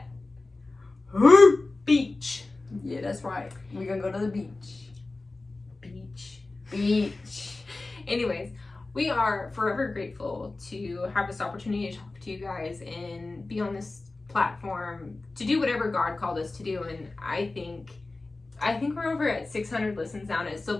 beach. Yeah, that's right. We're gonna go to the beach. Beach. Anyways, we are forever grateful to have this opportunity to talk to you guys and be on this platform to do whatever God called us to do. And I think we're over at 600 listens now, and it still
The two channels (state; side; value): quieter; right; 3.3 dB